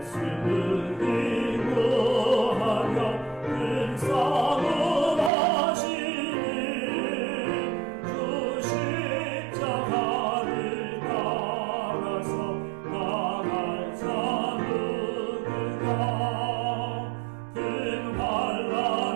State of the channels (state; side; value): drops out; left; at 5.3 s